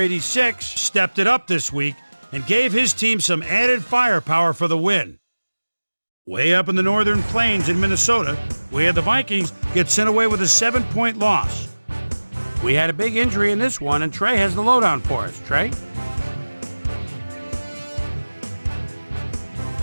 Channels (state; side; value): inverted; both; correlation -1.00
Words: stepped it up this week and gave his team some added firepower for the win. Way up in the northern plains in Minnesota, we had the Vikings get sent away with a 7-point loss. We had a big injury in this one, and Trey has the lowdown for us. Trey?